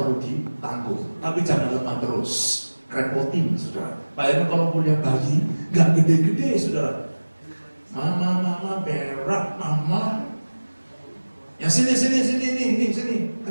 ditanggung, tapi jangan lemah terus. Repotin, saudara. Bayangkan kalau punya bayi, gak gede-gede, saudara. Mama, berak, mama. Ya sini,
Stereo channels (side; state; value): both; inverted; correlation -1.00